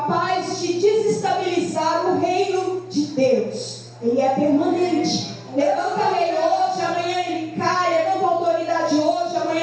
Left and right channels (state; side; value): identical; both; correlation 1.00